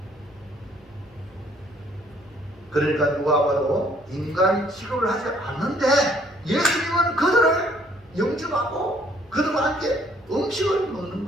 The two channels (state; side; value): noise; left; hum, 29 dB below the sound